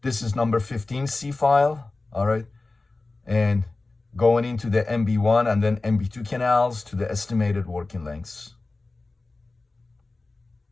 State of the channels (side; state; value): right; quieter; 3.3 dB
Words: this is number 15C file. All right, and going into the MB1 and then MB2 canals to the estimated working lengths.